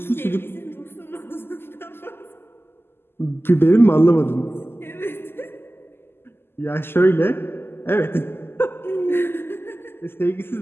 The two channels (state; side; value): late; right; 0.11 ms